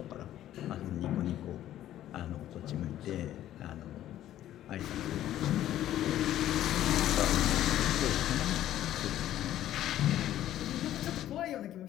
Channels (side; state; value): right; quieter; 12.6 dB